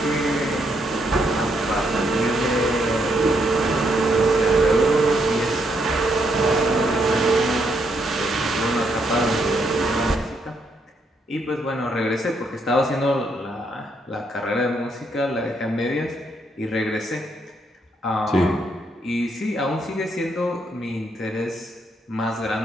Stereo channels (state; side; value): normal; both; correlation 0.75